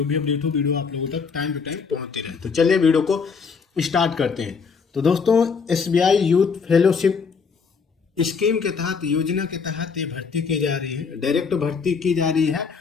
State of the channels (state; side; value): quieter; right; 5.5 dB